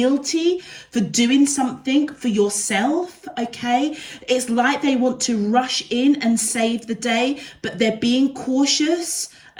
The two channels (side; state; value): both; identical; correlation 1.00